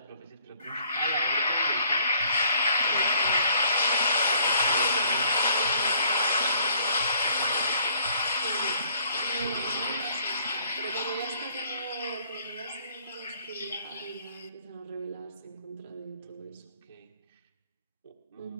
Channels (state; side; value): inverted; both; correlation -0.61